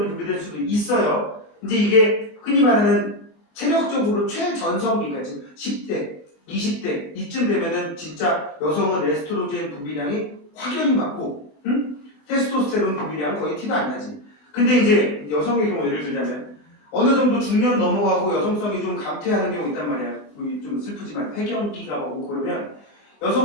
분비될 수도 있어요. 이제 이게 흔히 말하는 체력적으로 최전성기가 지금 10대, 20대 이쯤 되면은 진짜 여성은 에스트로겐 분비량이 확연히 많고, 테스토스테론 분비량 거의 티도 안 나지. 근데 이제 여성의 경우 예를 들자면 어느 정도 중년 넘어가고 여성성이 좀 감퇴하는 경우 있단 말이야. 좀 슬프지만 폐경기가 오고 그러면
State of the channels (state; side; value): late; right; 24 ms